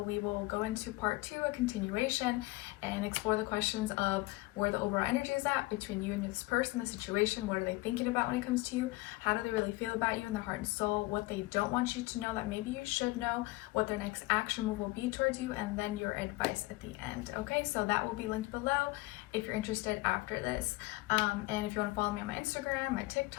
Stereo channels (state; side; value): quieter; right; 21.4 dB